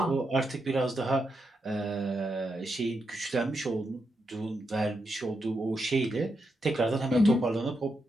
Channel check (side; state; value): both; normal; correlation 0.84